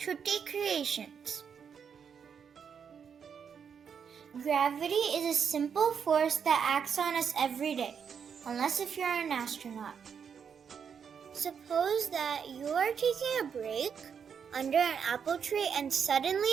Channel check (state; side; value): quieter; left; 7.1 dB